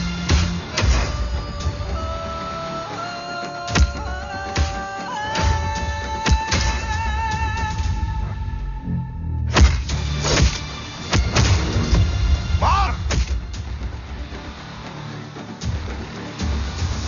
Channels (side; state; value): both; identical; correlation 1.00